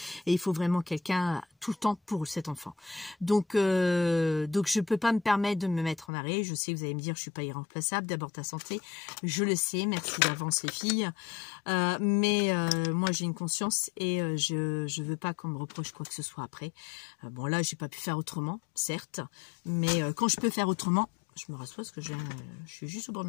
et il faut vraiment quelqu'un tout le temps pour cet enfant. Donc je peux pas me permettre de me mettre en arrêt. Je sais que vous allez me dire je suis pas irremplaçable, d'abord ta santé, je le sais, merci d'avance les filles, mais moi j'ai une conscience et je veux pas qu'on me reproche quoi que ce soit après. Bon là j'ai pas pu faire autrement, certes, mais quand je peux faire autrement, je me rassois parce que je suis juste au bord de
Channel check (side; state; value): right; drops out; at 6.1 s